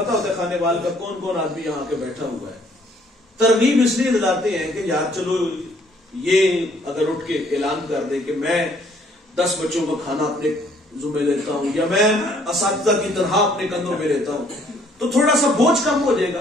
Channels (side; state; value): both; normal; correlation 0.63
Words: ہوتا ہے کھانے وال کا کون کون آدمی یہاں کے بیٹھا ہوا ہے. ترغیب اس لیے دلاتے ہیں کہ یار چلو یہ اگر اٹھ کے اعلان کر دے کہ میں 10 بچوں کا کھانا اپنے ذمہ لیتا ہوں یا میں اساتذہ کی طرح اپنے کندھوں پہ لیتا ہوں تو تھوڑا سا بوجھ کم ہو جائے